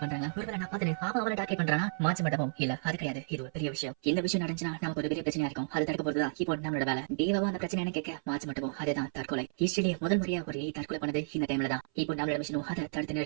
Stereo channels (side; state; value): left; silent; 56 dB below the other